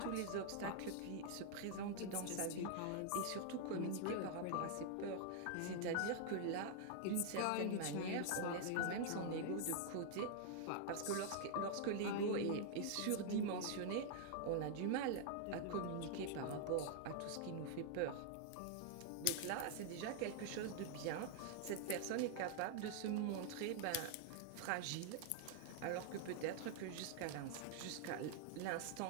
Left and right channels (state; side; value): different; both; correlation -0.01